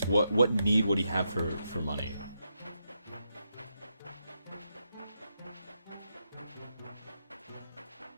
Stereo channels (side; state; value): both; inverted; correlation -0.83